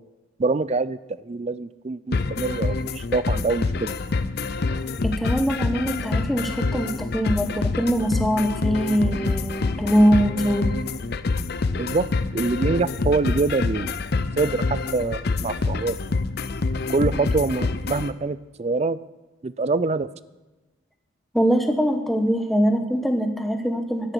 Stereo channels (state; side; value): normal; both; correlation 0.71